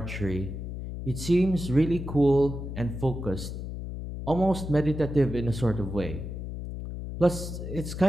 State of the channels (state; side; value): noise; left; hum, 7 dB below the sound